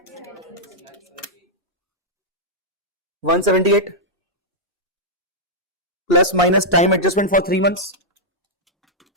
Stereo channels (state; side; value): normal; both; correlation -0.07